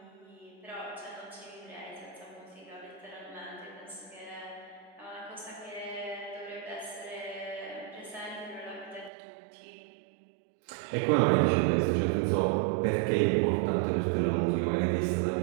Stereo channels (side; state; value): left; drops out; at 9.1 s